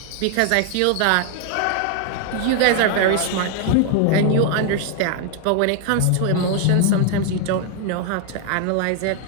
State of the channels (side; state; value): both; different; correlation 0.01